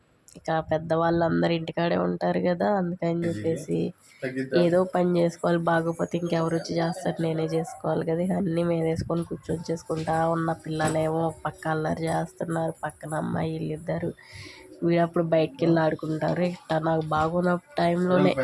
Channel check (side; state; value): both; identical; correlation 1.00